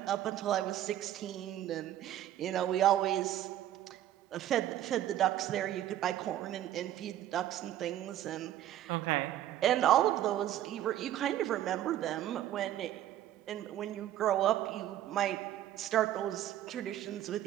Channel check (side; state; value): left; quieter; 12.3 dB